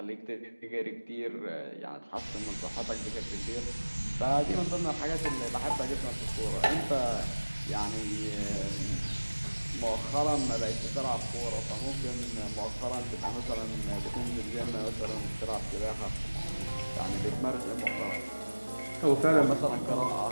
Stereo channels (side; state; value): both; inverted; correlation -1.00